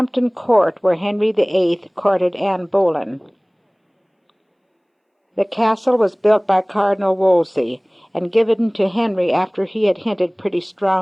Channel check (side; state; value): both; identical; correlation 1.00